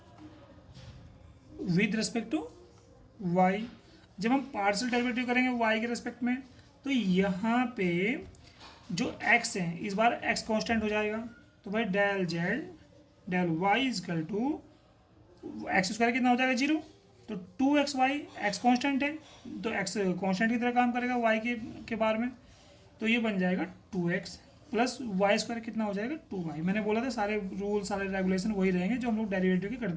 with respect to y। जब हम पार्शियल डेरिवेटिव करेंगे y के रिस्पेक्ट में, तो यहाँ पे जो x है इस बार x कांस्टेंट हो जाएगा। तो भाई del Z del y is equal to X square कितना हो जाएगा 0, तो 2xy x कांस्टेंट है तो x कांस्टेंट की तरह काम करेगा y के बार में, तो ये बन जाएगा 2x प्लस वाई स्क्वायर कितना हो जाएगा 2y। मैंने बोला था सारे रूल सारे रेगुलेशन वही रहेंगे जो हम लोग डेरिवेटिव के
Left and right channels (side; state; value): both; identical; correlation 1.00